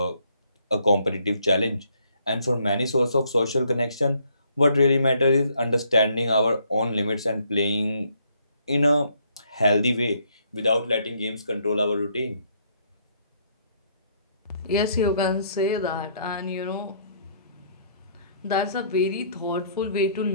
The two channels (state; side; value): inverted; both; correlation -0.68